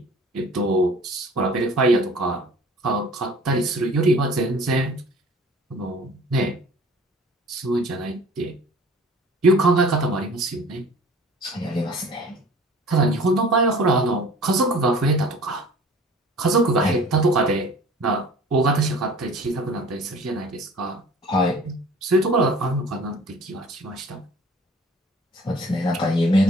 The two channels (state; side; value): normal; both; correlation 0.47